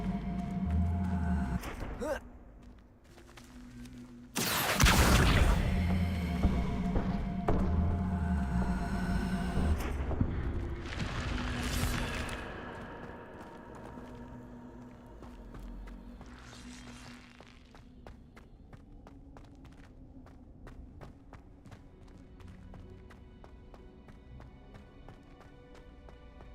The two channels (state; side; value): identical; both; correlation 1.00